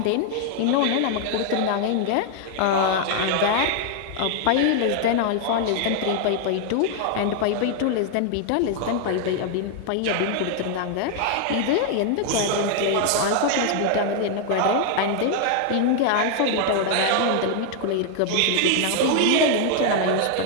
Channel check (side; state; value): both; different; correlation 0.00